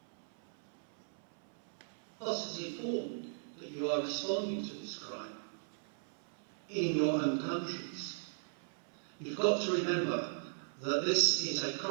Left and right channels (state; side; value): silent; left; 53 dB below the other